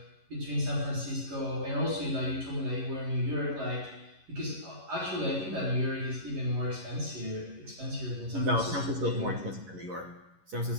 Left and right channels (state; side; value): late; left; 11 ms